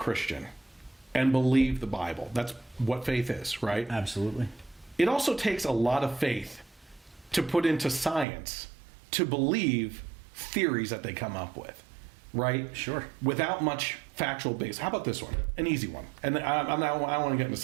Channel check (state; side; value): drops out; left; at 8.2 s